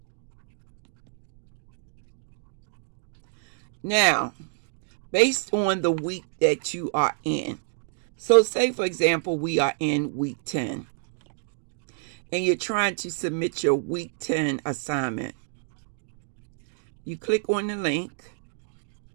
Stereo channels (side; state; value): left; silent; digital silence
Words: Now, based on the week that you are in, so say for example we are in week 10 and you're trying to submit your week 10 assignment. You click on the link,